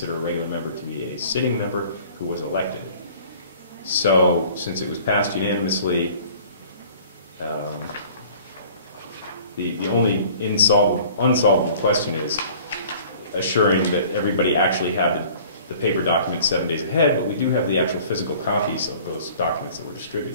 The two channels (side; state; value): both; inverted; correlation -0.49